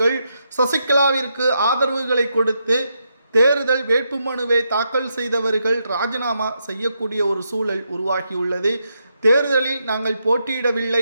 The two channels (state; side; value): inverted; both; correlation -0.81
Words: சசிகலாவிற்கு ஆதரவுகளை கொடுத்து தேர்தல் வேட்புமனுவை தாக்கல் செய்தவர்கள் ராஜினாமா செய்யக்கூடிய ஒரு சூழல் உருவாகியுள்ளது. தேர்தலில் நாங்கள் போட்டியிடவில்லை